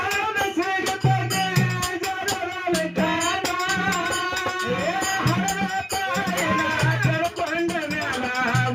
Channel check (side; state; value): both; identical; correlation 1.00